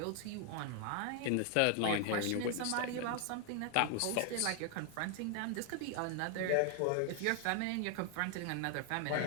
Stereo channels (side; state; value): both; different; correlation 0.00